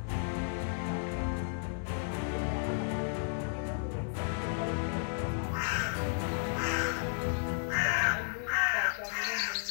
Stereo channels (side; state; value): right; silent; digital silence